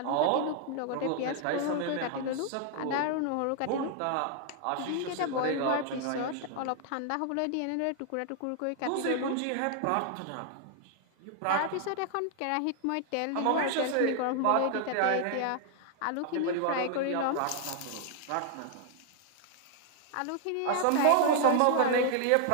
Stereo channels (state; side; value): different; both; correlation 0.00